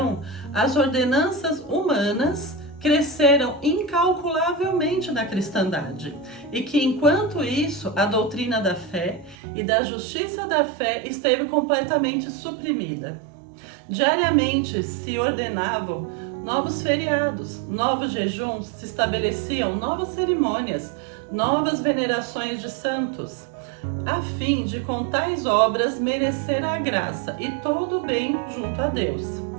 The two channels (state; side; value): drops out; left; at 9.3 s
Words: as ordenanças humanas cresceram incalculavelmente na cristandade, e que, enquanto isso, a doutrina da fé e da justiça da fé esteve completamente suprimida. Diariamente se ordenavam novos feriados, novos jejuns, se estabeleciam novas cerimônias, novas venerações de santos, a fim de com tais obras merecer a graça e todo o bem junto a Deus.